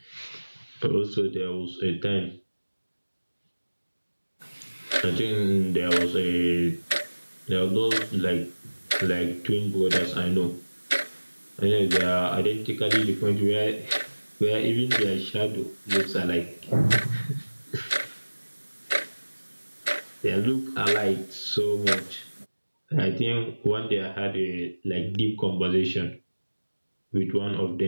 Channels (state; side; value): inverted; both; correlation -1.00